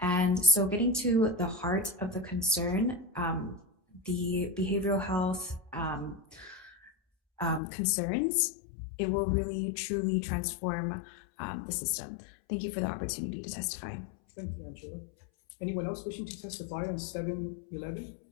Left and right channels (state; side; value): drops out; right; at 7.6 s